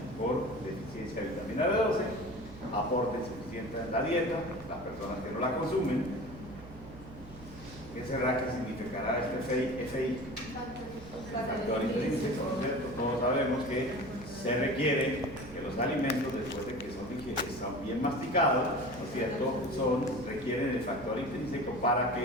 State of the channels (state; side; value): noise; right; hum, 17 dB below the sound